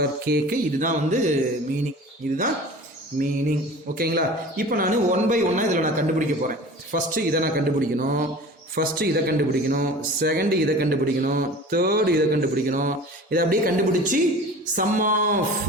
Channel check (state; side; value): normal; both; correlation 0.39